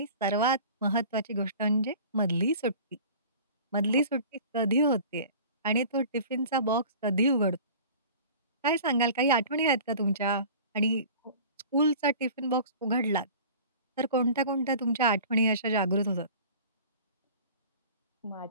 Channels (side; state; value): both; inverted; correlation -0.42